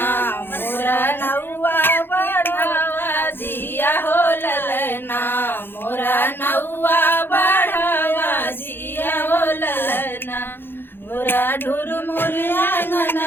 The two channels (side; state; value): right; late; 0.10 ms